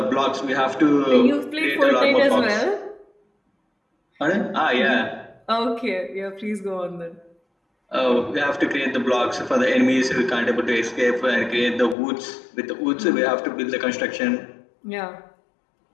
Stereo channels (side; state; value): right; drops out; at 12.0 s